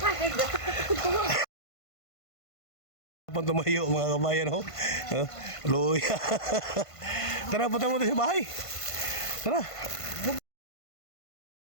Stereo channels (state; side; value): late; right; 1.5 ms